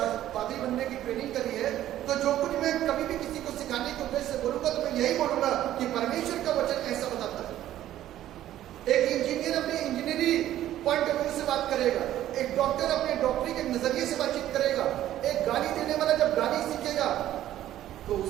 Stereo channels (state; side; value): quieter; left; 12.9 dB